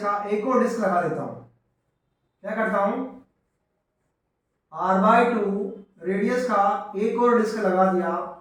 का एक और डिस्क लगा देता हूं। क्या करता हूं, r/2 रेडियस का एक और डिस्क लगा दिया,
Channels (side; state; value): both; identical; correlation 1.00